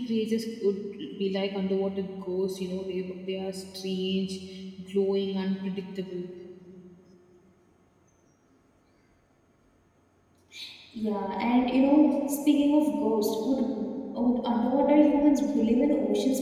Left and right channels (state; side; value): identical; both; correlation 1.00